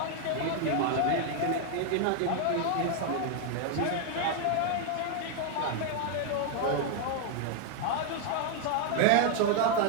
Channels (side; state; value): both; different; correlation 0.00